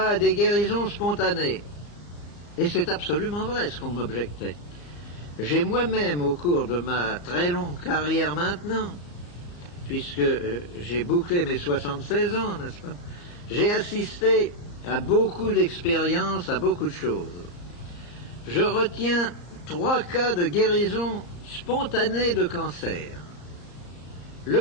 à des guérisons spontanées. Et c'est absolument vrai ce qu'on m'objectait. J'ai moi-même, au cours de ma très longue carrière maintenant, puisque j'ai bouclé mes 76 ans, n'est-ce pas, j'ai assisté à beaucoup d'expériences, à beaucoup de choses. Je retiens 3 cas de guérison spontanée de cancer. Le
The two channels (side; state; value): right; late; 34 ms